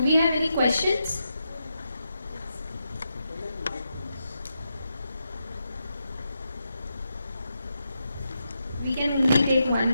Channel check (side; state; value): both; inverted; correlation -0.85